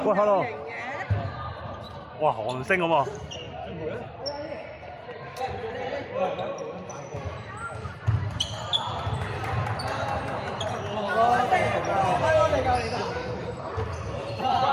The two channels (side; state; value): both; identical; correlation 1.00